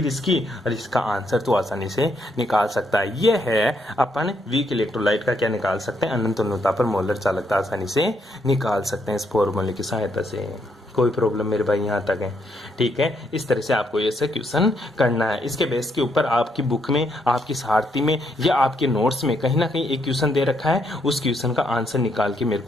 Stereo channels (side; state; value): both; normal; correlation 0.75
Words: और इसका आंसर तो आसानी से निकाल सकता है। ये है अपन वीक इलेक्ट्रोलाइट का क्या निकाल सकते हैं, अनंत तुल्यता पर मोलर चालकता आसानी से निकाल सकते हैं इस फॉर्मूले की सहायता से। कोई प्रॉब्लम मेरे भाई यहाँ तक है। ठीक है, इस तरह से आपको ये क्वेश्चन करना है। इसके बेस के ऊपर आपकी बुक में, आपकी सारथी में या आपके नोट्स में कहीं ना कहीं एक क्वेश्चन दे रखा है, उस क्वेश्चन का आंसर निकाल के मेरे